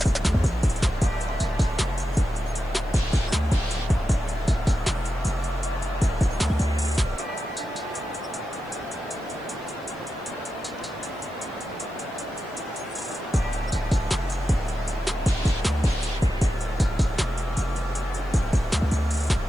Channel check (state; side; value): noise; right; hiss, 30 dB below the sound